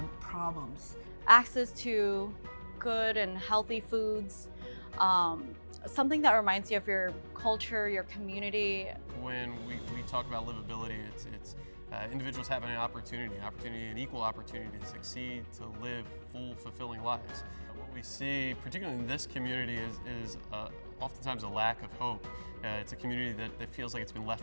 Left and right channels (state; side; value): inverted; both; correlation -1.00